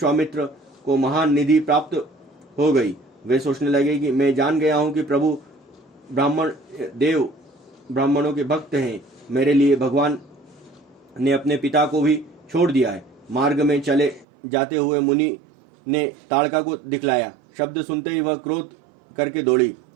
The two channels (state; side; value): drops out; left; at 14.2 s